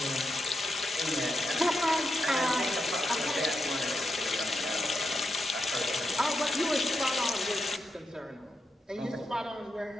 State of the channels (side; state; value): both; normal; correlation 0.85